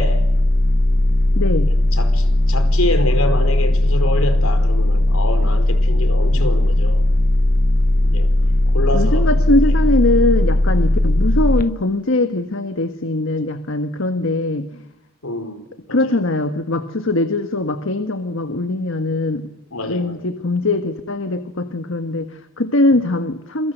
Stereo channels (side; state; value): both; normal; correlation 0.72